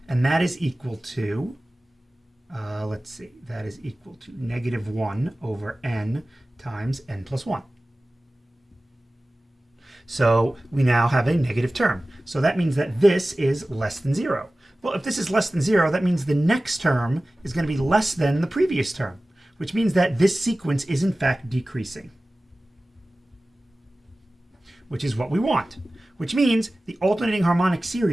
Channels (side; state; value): both; normal; correlation 0.97